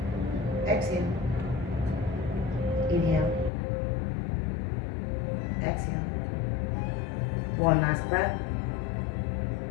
Exhale. Inhale. Exhale. One last breath.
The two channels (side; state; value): right; drops out; at 3.5 s